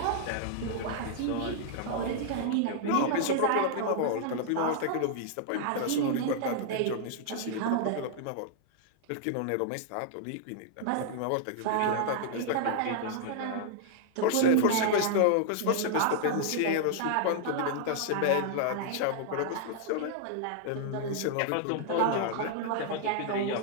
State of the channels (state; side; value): different; both; correlation -0.01